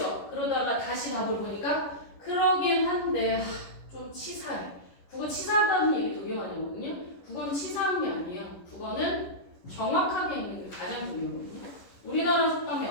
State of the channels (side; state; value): right; late; 11 ms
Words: 그러다가 다시 답을 보니까 그러긴 한데 좀 치사해. 국어 치사하다는 얘기 되게 많이 하거든요. 국어는 치사한 게 아니에요. 국어는 정확하게 읽는 게 가장 중요하거든요. 우리나라 속담에